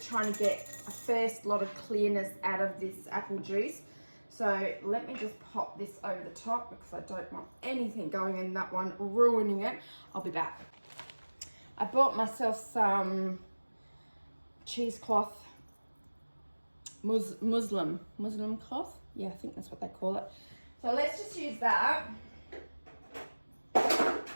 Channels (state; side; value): inverted; both; correlation -1.00